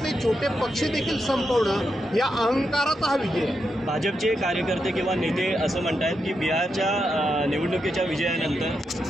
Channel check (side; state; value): both; normal; correlation 0.84